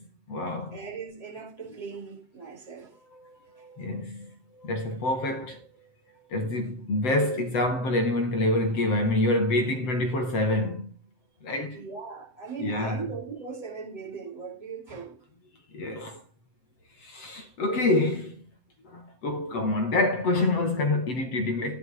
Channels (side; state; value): right; late; 7.8 ms